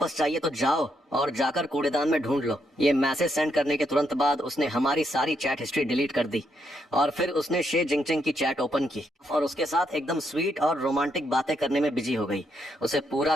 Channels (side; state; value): both; normal; correlation 0.77